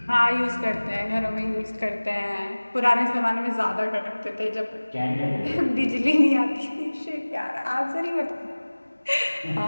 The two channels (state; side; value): inverted; both; correlation -1.00